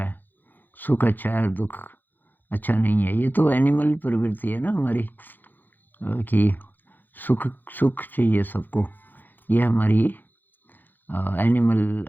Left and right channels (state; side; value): late; right; 0.088 ms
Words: है, सुख अच्छा है और दुख अच्छा नहीं है। ये तो एनिमल प्रवृत्ति है ना हमारी, कि सुख सुख चाहिए सबको। ये हमारी एनिमल